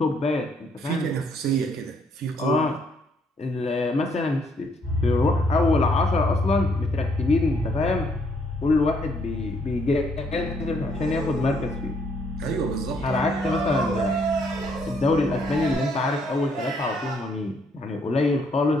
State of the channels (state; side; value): normal; both; correlation 0.70